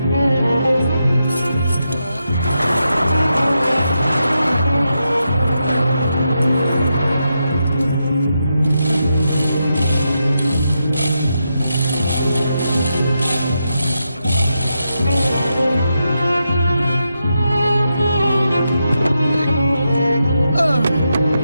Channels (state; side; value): inverted; both; correlation -0.85